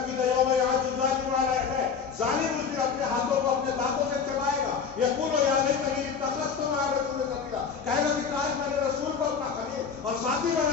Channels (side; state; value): right; quieter; 6.1 dB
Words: کی دیا میں آج ظالم ہے، ظالم اس دن اپنے ہاتھوں کو اپنے دانتوں سے چبائے گا. یقول یا لیتنی اتخذت مع الرسول سبیلا. کہے گا کہ کاش میں نے رسول کو اپنا خلیل اور ساتھی